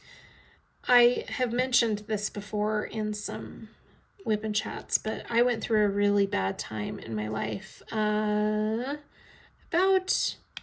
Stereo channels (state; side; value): identical; both; correlation 1.00